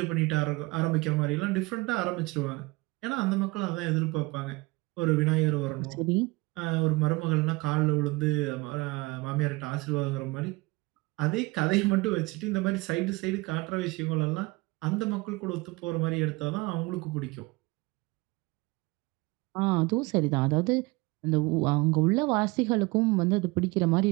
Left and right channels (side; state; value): left; quieter; 23.7 dB